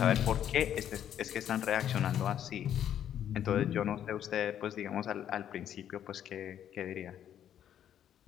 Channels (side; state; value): right; quieter; 10.1 dB